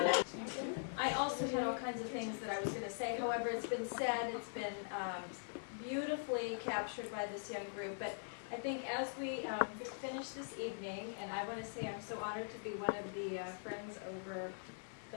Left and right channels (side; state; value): right; silent; digital silence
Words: I also had all kinds of things that I was going to say. However, it's been said, it's been beautifully captured by this young group. But I think as we finish this evening, and I want to say I'm so honored to be one of the friends over